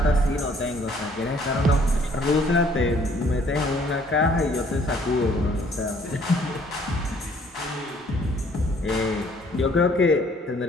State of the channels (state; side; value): normal; both; correlation 0.60